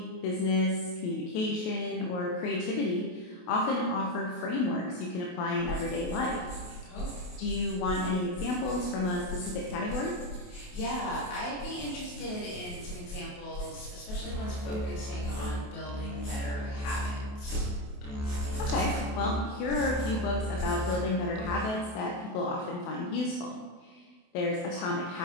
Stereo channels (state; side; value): late; right; 28 ms